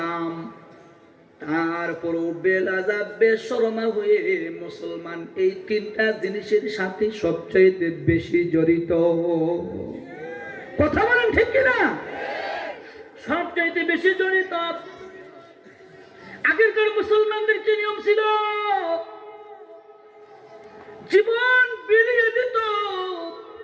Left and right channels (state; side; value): identical; both; correlation 1.00